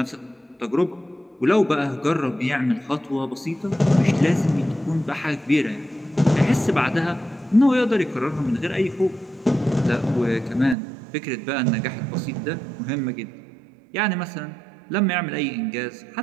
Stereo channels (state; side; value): drops out; left; at 10.8 s